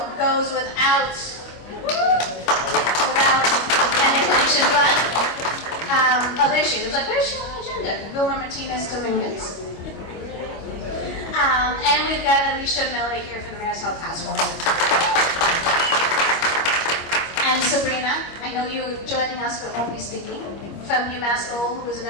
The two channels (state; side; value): late; right; 25 ms